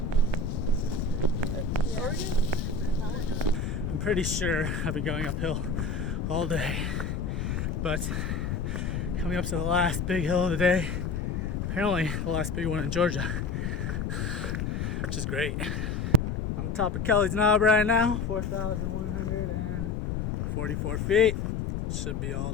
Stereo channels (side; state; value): left; noise; rumble, 1 dB below the sound